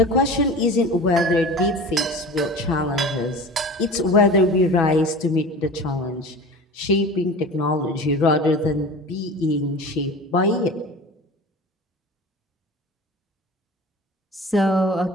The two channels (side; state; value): both; normal; correlation 0.36